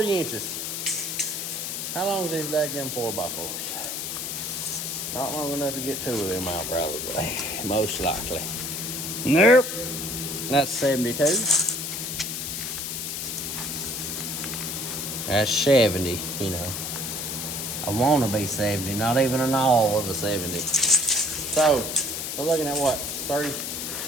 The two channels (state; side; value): noise; left; hiss, 4 dB below the sound